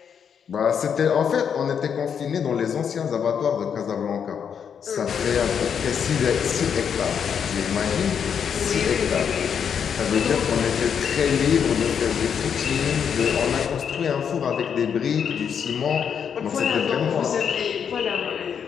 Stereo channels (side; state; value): right; quieter; 7.5 dB